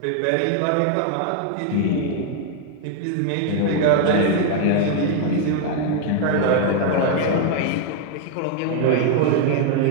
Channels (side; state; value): both; different; correlation 0.00